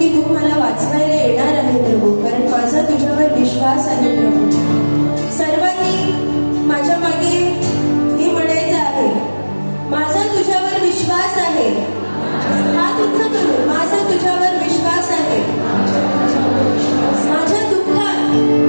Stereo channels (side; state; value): both; inverted; correlation -1.00